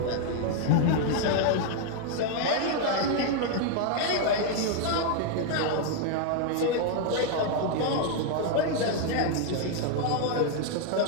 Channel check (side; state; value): both; different; correlation 0.00